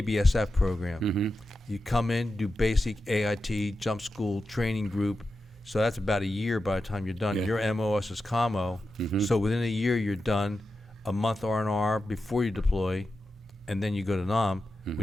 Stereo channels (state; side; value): normal; both; correlation 0.91